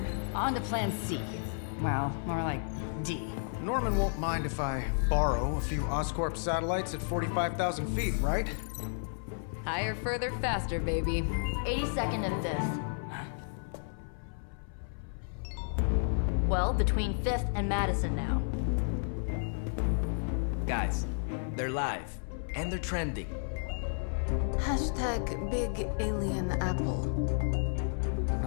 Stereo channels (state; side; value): silent; right; 56 dB below the other